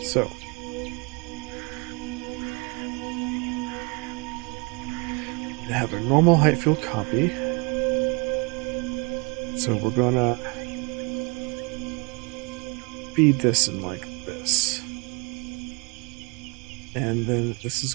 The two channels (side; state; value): left; quieter; 30.7 dB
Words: So we have a normal height field copy. So we're gonna feed this in like this. And then this is